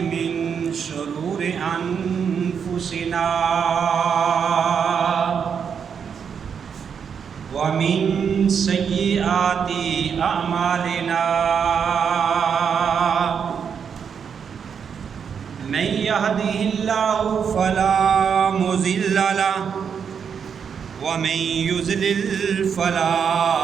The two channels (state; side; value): quieter; left; 7.0 dB